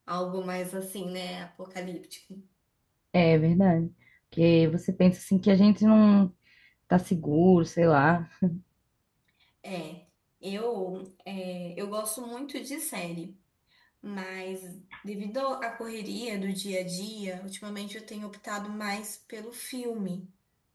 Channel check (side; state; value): both; identical; correlation 1.00